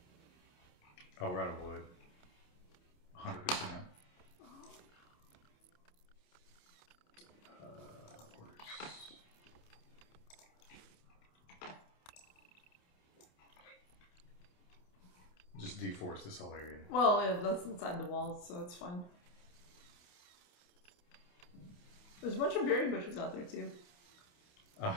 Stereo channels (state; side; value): late; right; 28 ms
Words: Oh, we're out of wood. 100%. Just deforest this whole area. Well, yeah, that's inside the walls, so it's fine. There's a bunch of berry bushes out there, too.